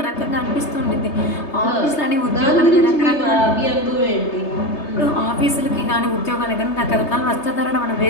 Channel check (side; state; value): right; late; 3.3 ms